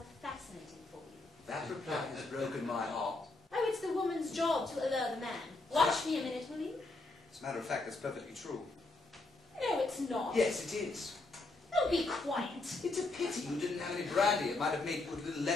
fascinating for you. That reply has broken my heart. Oh, it's the woman's job to allure the man. Watch me a minute, will you? As a matter of fact, that's perfectly true. No, it's not. Yes, it is. Oh, be quiet. It's a pity you didn't have any brandy. It might have made food a little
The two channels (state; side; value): quieter; right; 3.1 dB